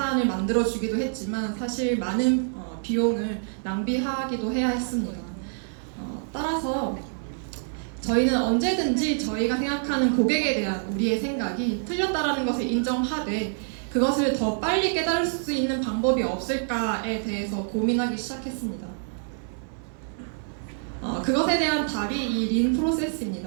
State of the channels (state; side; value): silent; left; digital silence